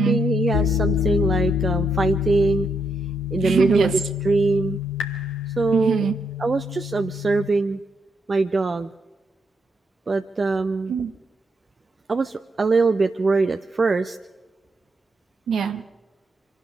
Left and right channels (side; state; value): both; normal; correlation 0.78